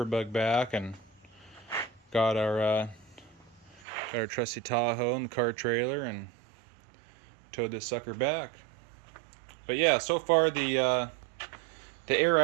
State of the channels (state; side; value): drops out; left; at 3.9 s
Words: bug back and got our trusty Tahoe and the car trailer and towed this sucker back. But yeah, so far the air